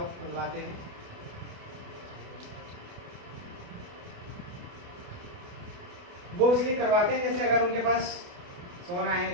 हैं। वो इसलिए करवाते हैं जैसे अगर उनके पास सोना है,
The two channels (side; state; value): left; late; 28 ms